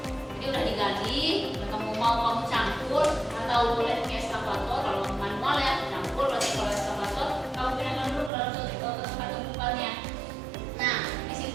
Jadi udah digali, udah kamu campur atau boleh ke eskavator kalau manual ya, campur berarti kalau eskavator kamu pindahkan dulu ke dalam suatu tempat tumpukannya. Nah di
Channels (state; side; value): drops out; left; at 8.3 s